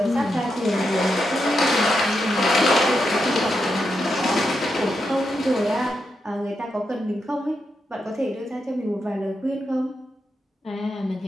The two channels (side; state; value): both; normal; correlation 0.84